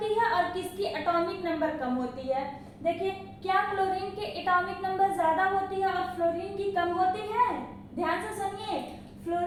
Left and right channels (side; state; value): both; identical; correlation 1.00